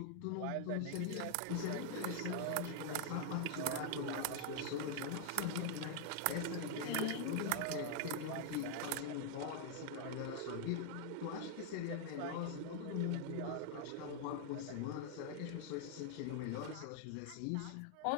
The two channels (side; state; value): both; different; correlation 0.00